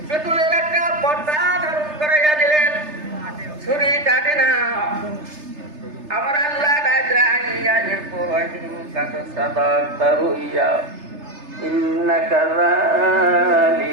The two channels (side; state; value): left; late; 3.3 ms